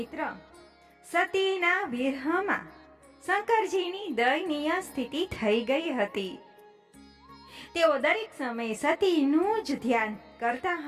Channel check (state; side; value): identical; both; correlation 1.00